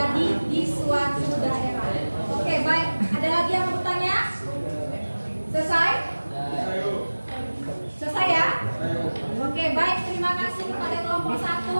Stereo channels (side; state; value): both; inverted; correlation -1.00